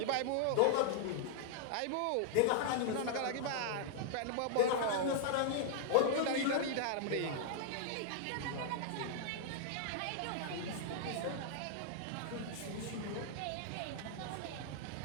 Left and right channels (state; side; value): different; both; correlation -0.01